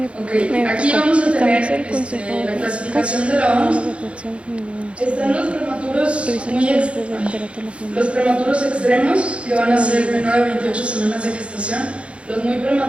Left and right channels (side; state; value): left; late; 0.060 ms